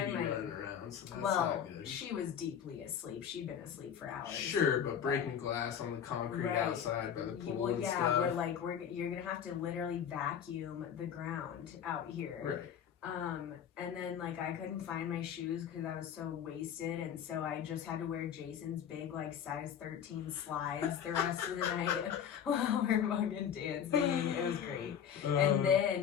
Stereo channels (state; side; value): quieter; right; 8.6 dB